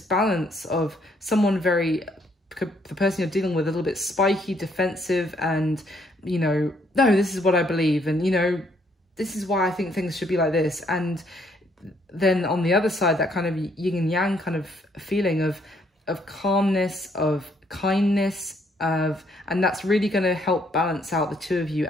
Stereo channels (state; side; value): normal; both; correlation 0.69